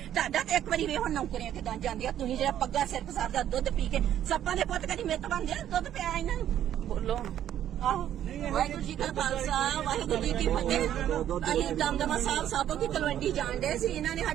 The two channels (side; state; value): left; quieter; 11.0 dB